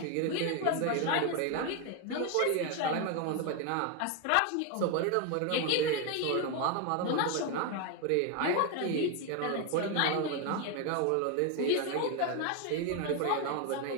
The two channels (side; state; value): both; different; correlation 0.01